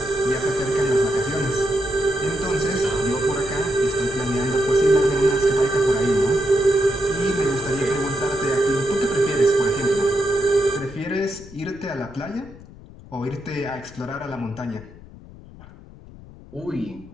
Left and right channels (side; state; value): left; noise; rumble, 19 dB below the sound